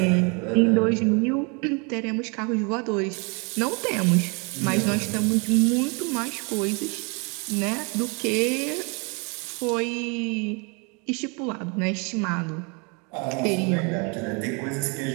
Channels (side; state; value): left; quieter; 32.6 dB